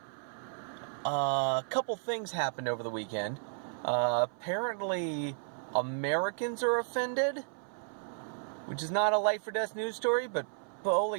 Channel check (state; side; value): silent; left; 56 dB below the other